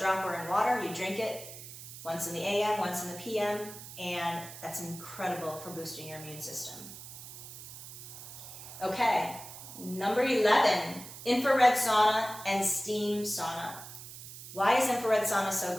in water, you drink it once in the AM, once in the PM, and that's incredible for boosting your immune system. Okay, number 11, infrared sauna and steam sauna. Why is infrared sauna so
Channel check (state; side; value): noise; right; hiss, 13 dB below the sound